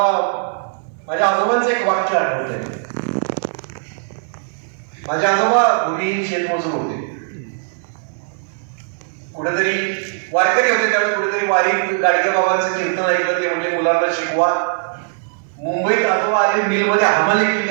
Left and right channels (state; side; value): silent; left; 59 dB below the other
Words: माझ्या आजोबांचं एक वाक्य आठवतंय. माझे आजोबा भूमिहीन शेतमजूर होते, कुठेतरी वारकरी होते, त्यावेळी कुठेतरी वारीत गाडगे बाबांचं कीर्तन ऐकलं. ते म्हणजे मुलांना शिकवा. मुंबईत आजोबा आले, मिलमध्ये हमाली